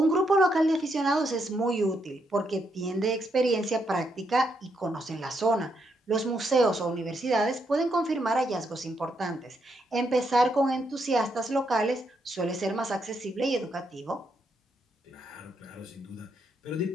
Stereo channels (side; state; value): both; normal; correlation 0.78